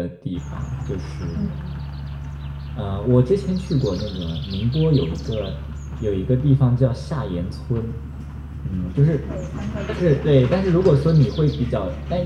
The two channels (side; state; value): both; identical; correlation 1.00